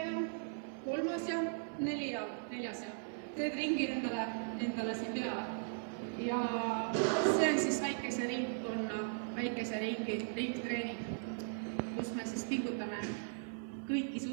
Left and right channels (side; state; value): left; silent; 52 dB below the other